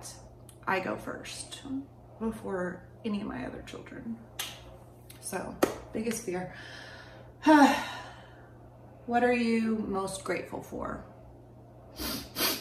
I go first before any of my other children. So, biggest fear. What are you most grateful for?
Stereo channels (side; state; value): both; identical; correlation 1.00